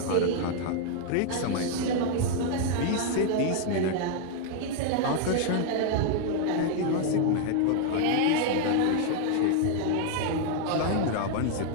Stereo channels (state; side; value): different; both; correlation 0.00